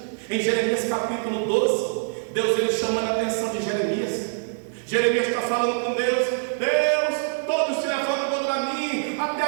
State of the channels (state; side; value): silent; left; 58 dB below the other